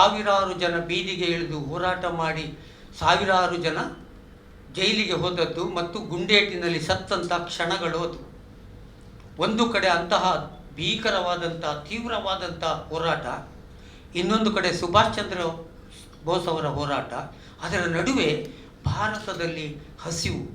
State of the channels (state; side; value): identical; both; correlation 1.00